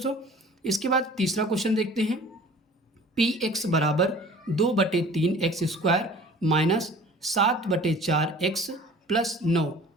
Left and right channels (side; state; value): both; normal; correlation 0.46